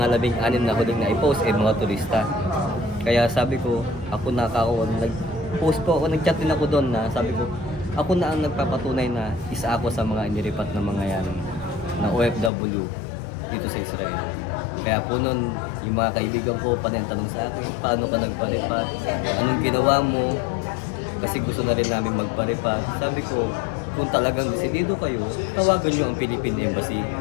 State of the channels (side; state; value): right; drops out; at 12.5 s